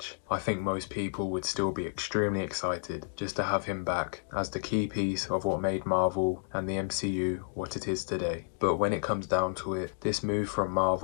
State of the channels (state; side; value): silent; right; digital silence